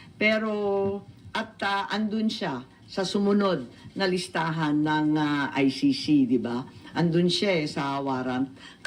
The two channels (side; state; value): both; identical; correlation 1.00